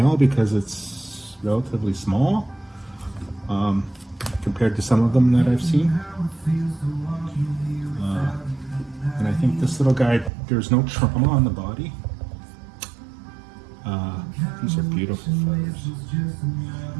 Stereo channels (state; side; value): drops out; left; at 10.3 s